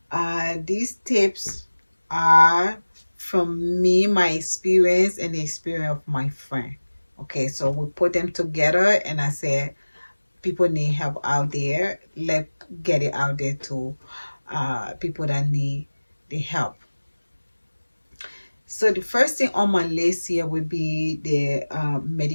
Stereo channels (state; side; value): inverted; both; correlation -1.00